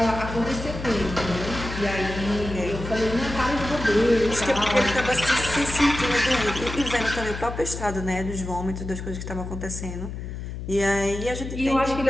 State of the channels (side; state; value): left; noise; hum, 7 dB below the sound